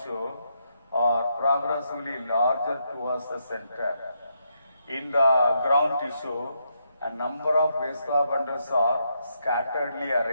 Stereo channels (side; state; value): both; inverted; correlation -0.79